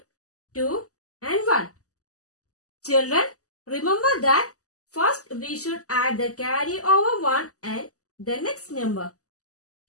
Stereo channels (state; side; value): late; right; 0.66 ms